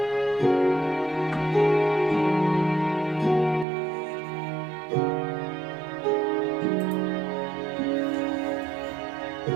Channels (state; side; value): drops out; left; at 3.7 s